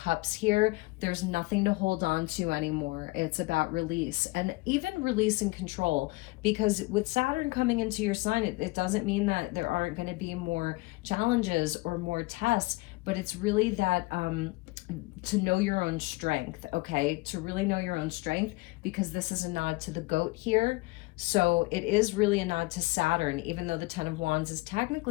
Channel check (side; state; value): right; quieter; 23.2 dB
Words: here? There's nothing to hold on to anymore. It's about release, and even release and control, because with Saturn coming into your sign, it doesn't mean that there aren't going to be more challenges or more tests, but it's really that to know your own strength, okay? To really know your own strength, because this is a nod to the goat here. So it is really a nod to Saturn, even though the Ten of Wands is